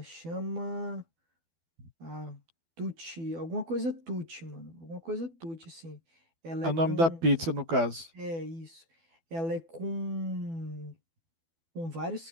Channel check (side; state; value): left; late; 12 ms